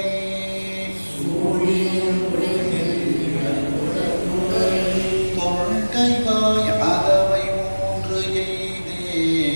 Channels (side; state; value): both; inverted; correlation -1.00